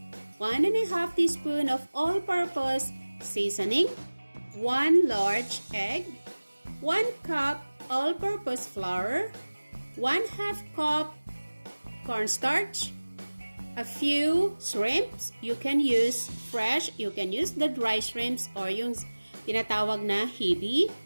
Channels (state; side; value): inverted; both; correlation -1.00